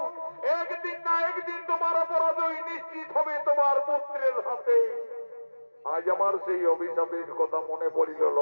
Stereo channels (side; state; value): both; inverted; correlation -1.00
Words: একদিন না একদিন তোমার পরাজয় নিশ্চিত হবে তোমার পুত্রের হাতে। আজ আমার সেই অভিশাপের কথা মনে পড়িল